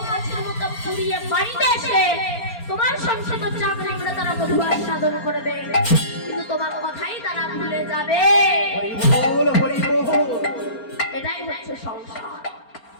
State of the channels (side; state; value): right; late; 4.3 ms